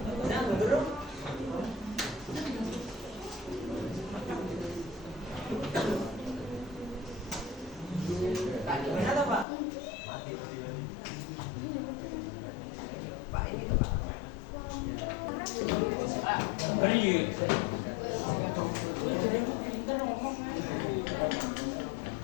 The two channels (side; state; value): right; drops out; at 9.5 s